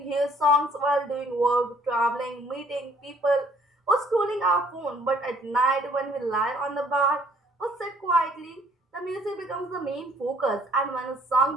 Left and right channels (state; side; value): normal; both; correlation 0.61